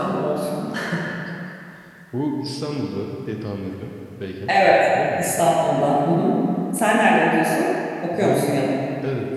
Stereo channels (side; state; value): both; identical; correlation 1.00